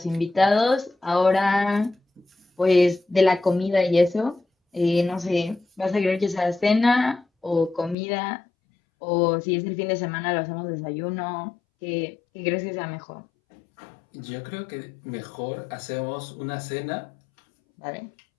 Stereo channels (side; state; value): right; drops out; at 8.0 s